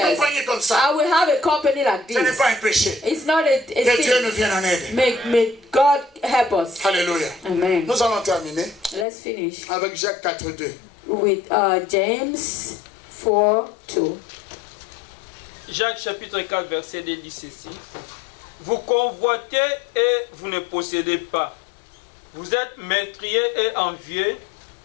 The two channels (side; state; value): right; drops out; at 9.1 s